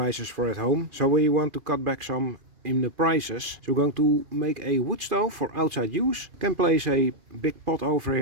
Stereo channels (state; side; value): late; left; 2.5 ms